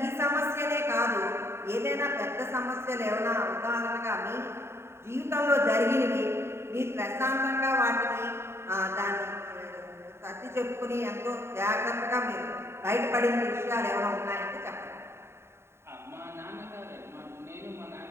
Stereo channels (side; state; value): left; late; 0.12 ms